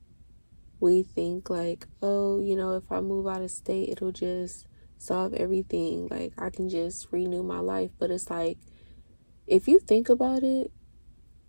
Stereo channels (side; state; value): both; inverted; correlation -1.00